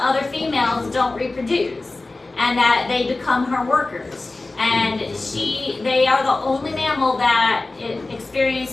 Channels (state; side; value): quieter; right; 3.2 dB